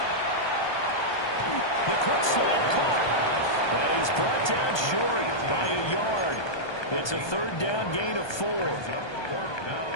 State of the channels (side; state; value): right; late; 1.2 ms